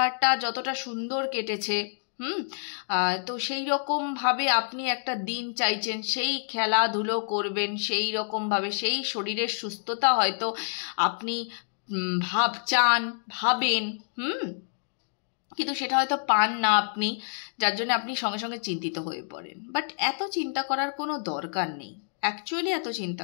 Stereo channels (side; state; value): right; silent; digital silence